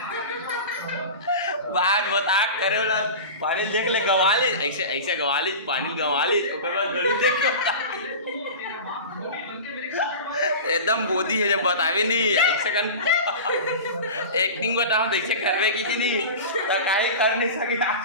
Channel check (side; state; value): both; inverted; correlation -0.31